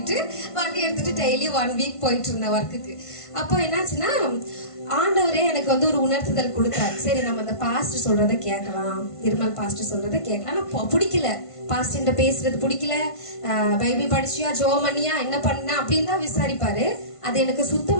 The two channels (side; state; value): right; late; 1.5 ms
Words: வண்டி எடுத்துட்டு டெய்லி 1 வீக் போயிட்டு இருந்தேன் ஒர்க்குக்கு. அப்போ என்னாச்சுன்னா ஆண்டவரே எனக்கு வந்து ஒரு உணர்த்துதல் கொடுத்தாரு. சரி நம்ம அந்த பாஸ்டர் சொல்றதை கேட்கலாம், நிர்மல் பாஸ்டர் சொல்றதை கேட்கலாம். ஆனா பிடிக்கல, பாஸ்டர்கிட்ட பேசுறது பிடிக்கல. பைபிள் படிச்சியா, ஜோமனியா, என்ன பண்ண அப்படின்னு தான் விசாரிப்பாரு. அது எனக்கு